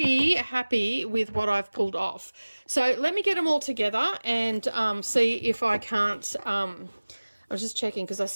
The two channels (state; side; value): inverted; both; correlation -1.00